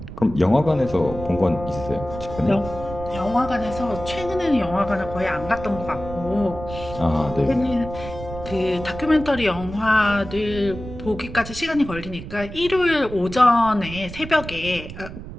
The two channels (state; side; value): noise; right; rumble, 11 dB below the sound